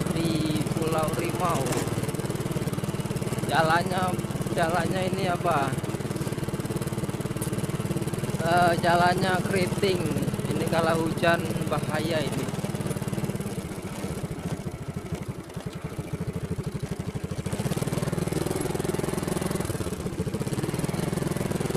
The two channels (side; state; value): both; identical; correlation 1.00